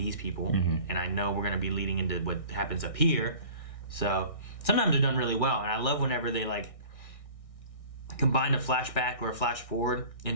people, and I know we're going to be leading into what happens up here. So sometimes they're done really well, and I love whenever they combine a flashback or a flash forward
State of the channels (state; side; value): late; right; 1.6 ms